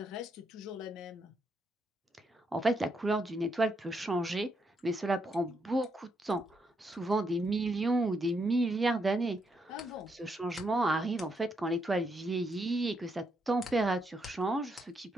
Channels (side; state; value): both; normal; correlation 0.78